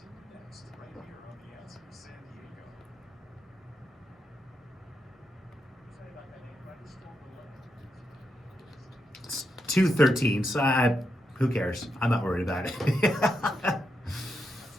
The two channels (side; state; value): both; normal; correlation 0.84